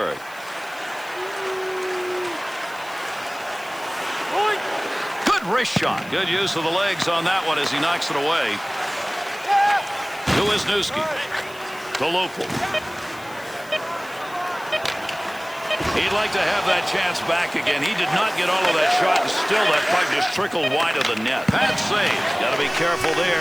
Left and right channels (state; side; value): noise; left; hiss, 22 dB below the sound